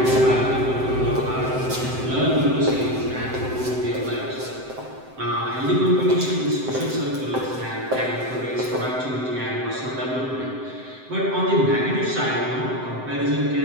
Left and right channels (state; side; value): late; left; 7.8 ms